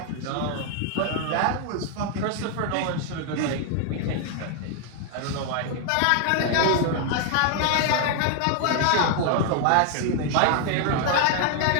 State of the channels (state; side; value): different; both; correlation 0.00